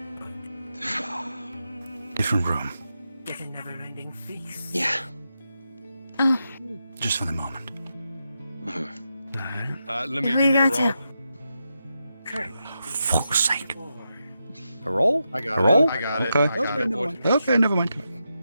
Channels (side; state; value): both; inverted; correlation -0.86